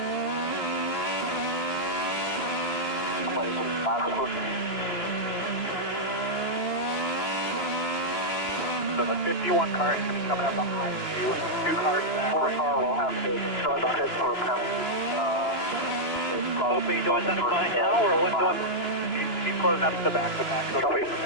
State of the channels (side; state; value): right; late; 2.9 ms